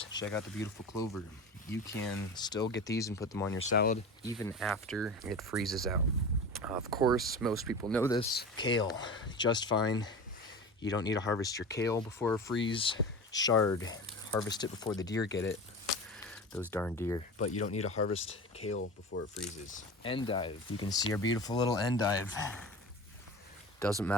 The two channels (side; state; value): both; normal; correlation 0.32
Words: check out the beautiful clover. You can still get these and put them on your salad even after it freezes out. Of course, most people know this. Kale, just fine. You don't need to harvest your kale before a freeze. Chard, harvest it before the deer get it. Those darn deer. But you don't need to harvest kale before it freezes. Endive, you can see our beautiful little endive. Doesn't